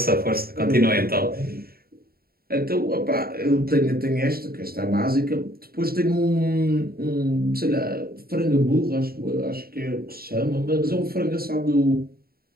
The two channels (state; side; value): late; left; 0.44 ms